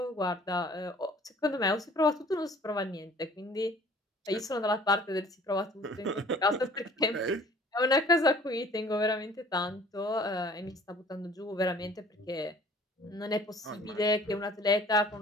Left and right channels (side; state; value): both; normal; correlation 0.51